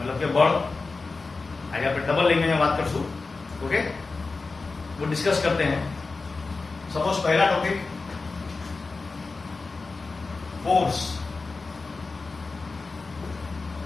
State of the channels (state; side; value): quieter; right; 3.9 dB